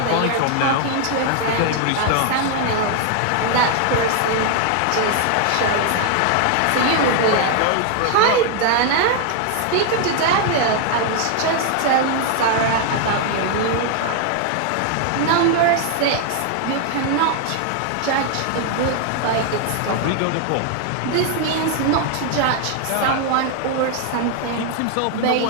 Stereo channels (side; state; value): both; different; correlation 0.00